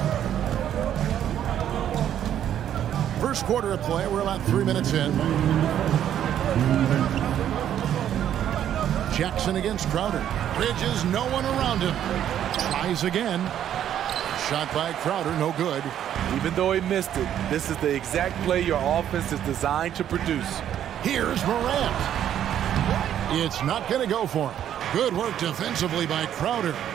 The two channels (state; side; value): quieter; left; 10.4 dB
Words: First quarter of play. We're about 3 minutes in. Jackson against Crowder. Bridges, no one around him. Tries again. Shot by Crowder, no good. Even though he missed it, this is the exact play your offense is designed to produce. Here's Morant. It's not going to go for him. Good work defensively by Crowder.